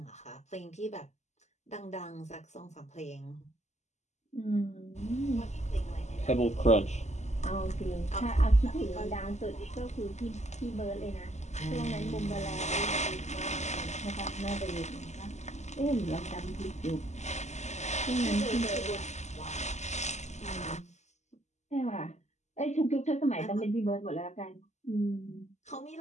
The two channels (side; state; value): right; late; 0.33 ms